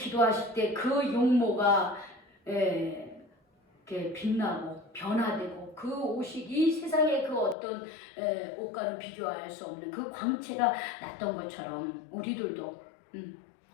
때 그 용모가 이렇게 빛나고 변화되고 그 옷이 이 세상의 그 어떤 옷과는 비교할 수 없는 그 광채가 났던 것처럼 우리들도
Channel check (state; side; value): drops out; right; at 7.6 s